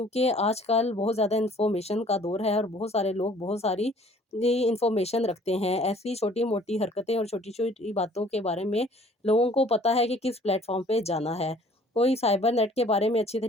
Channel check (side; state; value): both; normal; correlation 0.55